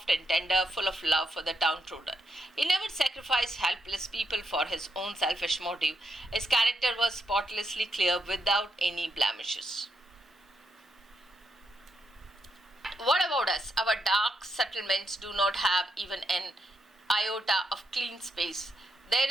and tender, full of love for the downtrodden. He never sacrificed helpless people for his own selfish motive. His character was spotlessly clear, without any blemishes. What about us? Our dark settlements do not have even an iota of clean space. There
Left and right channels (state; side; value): normal; both; correlation 0.81